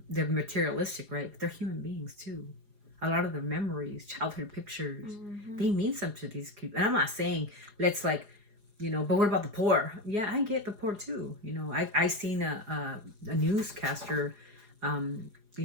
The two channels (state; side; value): late; left; 4.8 ms